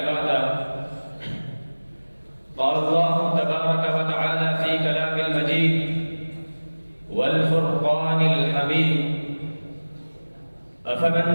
بعده. قال الله تبارك وتعالى في كلام المجيد والفرقان الحميد: أفمن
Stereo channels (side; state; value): both; inverted; correlation -1.00